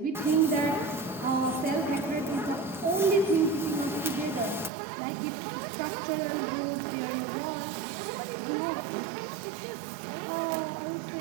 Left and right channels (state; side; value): drops out; left; at 4.7 s